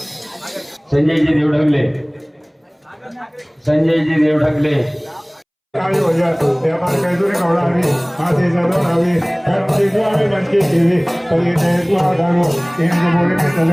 संजयजी देवढगले, संजयजी देवढगले, आवी हो जाए ते हमारे कैसुरी कौड़ा आवी आते जरूर आवी हर चीज़ आवी बनके टीवी कभी ने तो आधारो इन जो बोले में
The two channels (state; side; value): identical; both; correlation 1.00